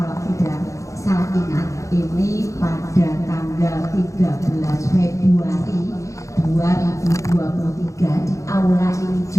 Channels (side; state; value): right; late; 0.15 ms